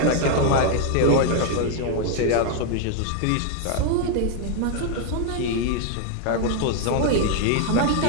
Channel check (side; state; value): both; different; correlation 0.00